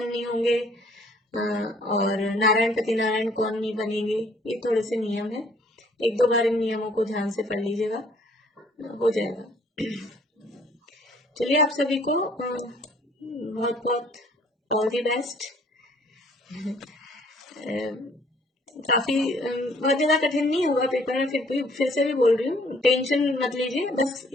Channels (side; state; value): both; normal; correlation 0.60